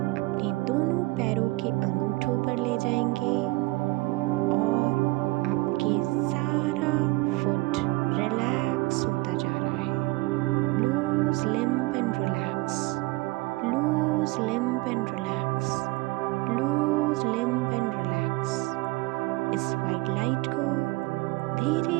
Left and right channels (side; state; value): left; quieter; 22.7 dB